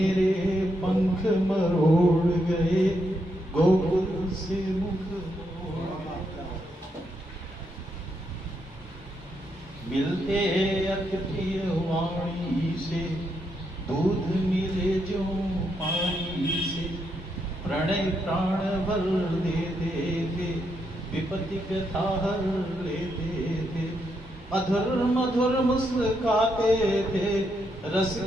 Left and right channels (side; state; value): both; normal; correlation 0.79